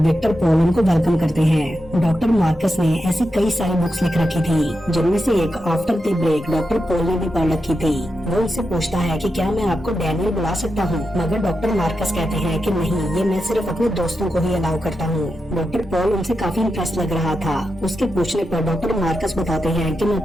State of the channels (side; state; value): both; normal; correlation 0.88